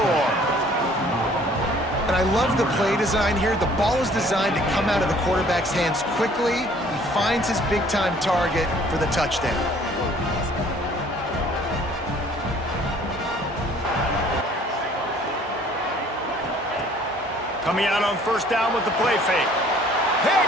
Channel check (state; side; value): normal; both; correlation 0.56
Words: And I love the play design here. The ball is designed to come out of the quarterback's hands quickly. He finds his big-time target for the touchdown. Coming out on 1st down with the play fake.